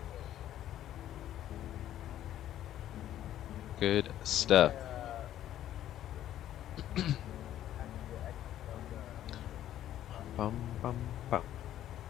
Good stuff. Bum, bum, bum.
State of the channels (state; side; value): quieter; right; 12.0 dB